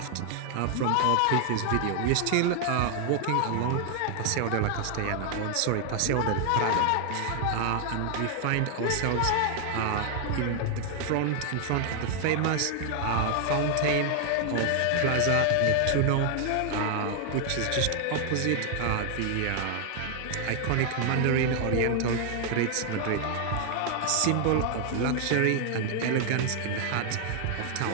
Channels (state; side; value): different; both; correlation 0.00